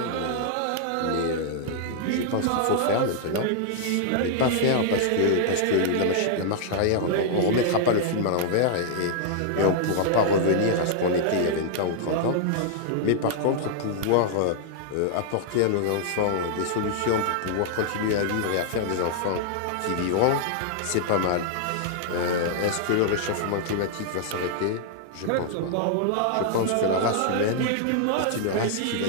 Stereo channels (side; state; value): both; different; correlation -0.01